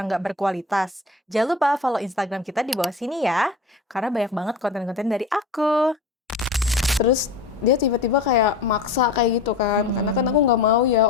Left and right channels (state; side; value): quieter; right; 4.0 dB